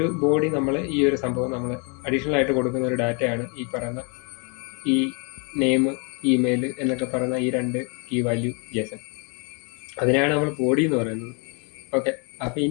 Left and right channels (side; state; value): right; quieter; 34.9 dB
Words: ബോഡി നമ്മൾ ഈ ഒരു സംഭവം നമ്മൾ അഡീഷണൽ ആയിട്ട് കൊടുക്കുന്ന ഒരു ഡാറ്റയാണ് ഈ പറയുന്ന ഈ നെയിം, ഇമെയിൽ എന്നൊക്കെ പറയുന്ന ഈ 2 കീ വാല്യൂ JSON. അതിനാണ് നമ്മൾ ബോഡി എന്ന് പറയുന്നത്. ഓക്കെ, അപ്പോൾ